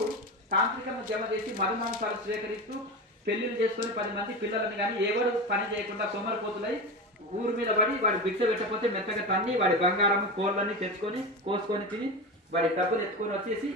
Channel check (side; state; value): both; normal; correlation 0.23